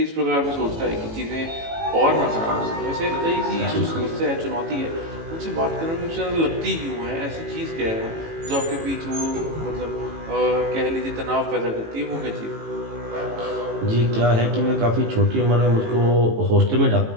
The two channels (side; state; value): left; late; 18 ms